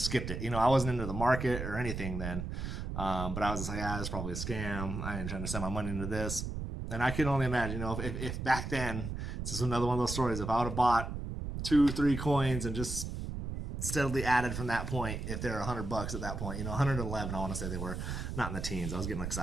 skipped it. I wasn't into the market or anything then. But I was just like, it's probably a scam. I ain't trying to send my money into this. And I can only imagine, if back then, it's just another one of those stories. If I would have bought 2, 3 coins and just steadily added from that point, if they're $100 at that point, 111, I want to say they were, not in the teens. I was getting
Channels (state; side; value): noise; right; rumble, 5 dB below the sound